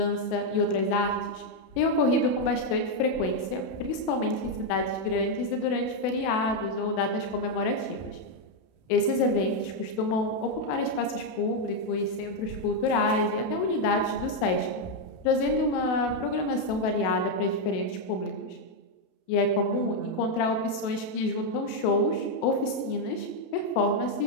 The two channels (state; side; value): late; right; 32 ms